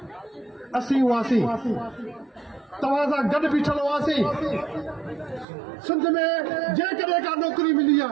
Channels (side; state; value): left; drops out; at 5.5 s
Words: असीं हुआसीं तव्हां सां गॾु बीठल हुआसीं सिंध में जेकॾहिं का नौकिरी मिली